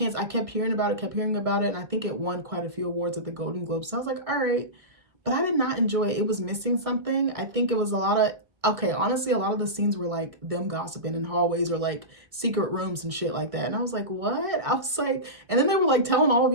I kept hearing about it, and I think it won quite a few awards at the Golden Globes. So I was like, all right. But I did not enjoy it. It was missing something. I think it was a lot of, honestly, a lot of the scenes were like them gossiping in hallways or like secret rooms and shit like that. And I was like, what? I was like, and then they were like telling all of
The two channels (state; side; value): late; left; 1.5 ms